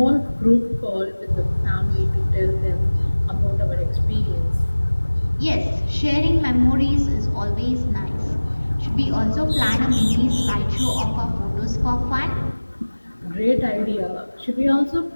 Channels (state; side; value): inverted; both; correlation -1.00